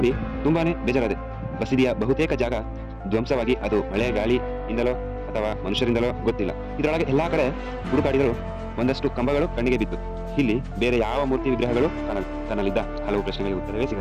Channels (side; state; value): both; identical; correlation 1.00